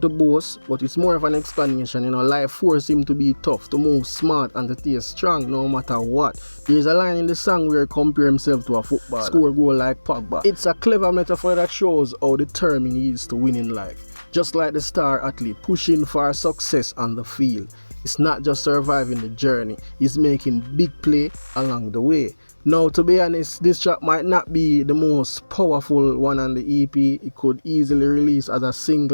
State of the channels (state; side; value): inverted; both; correlation -1.00